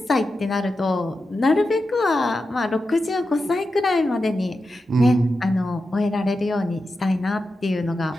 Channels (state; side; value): normal; both; correlation 0.90